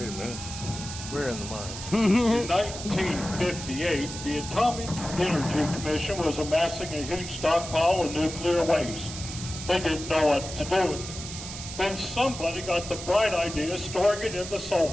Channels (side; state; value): right; noise; hiss, 9 dB below the sound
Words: a minute. We're in the mine. In 1958, the Atomic Energy Commission was amassing a huge stockpile of nuclear waste. They didn't know what to do with it. Then somebody got the bright idea of storing it in the